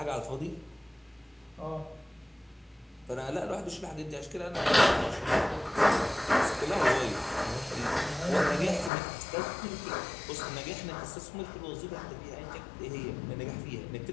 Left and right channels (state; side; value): drops out; right; at 8.9 s